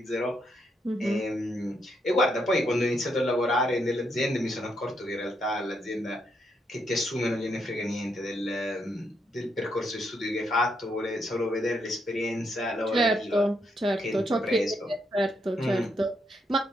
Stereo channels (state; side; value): normal; both; correlation 0.78